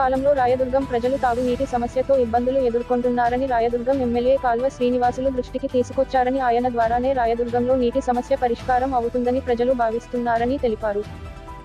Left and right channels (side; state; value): both; identical; correlation 1.00